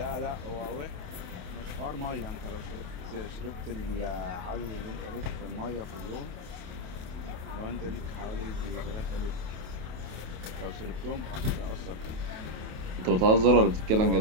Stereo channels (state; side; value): late; left; 28 ms